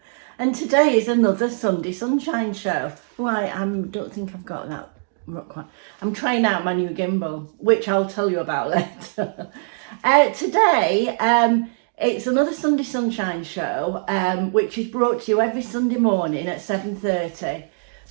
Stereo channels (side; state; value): left; silent; digital silence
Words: And today is another Sunday Sunshine show. Why, I don't think I've got that quite. I'm trying out my new gimbal, which I'll tell you about later. Today it's another Sunday Sunshine show, which is brought to you every Sunday morning at 7:30